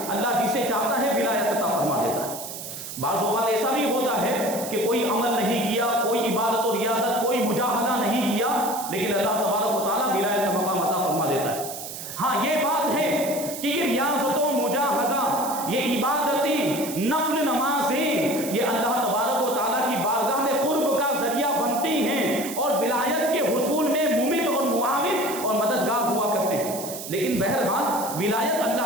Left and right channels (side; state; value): right; noise; hiss, 9 dB below the sound